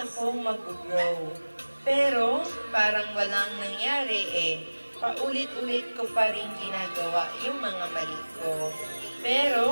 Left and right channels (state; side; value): inverted; both; correlation -1.00